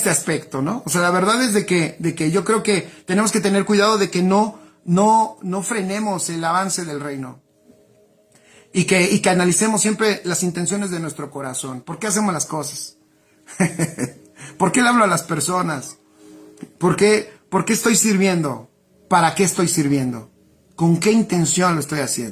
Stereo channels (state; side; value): identical; both; correlation 1.00